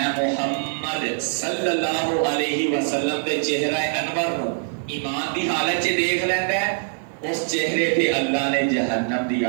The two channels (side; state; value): left; silent; digital silence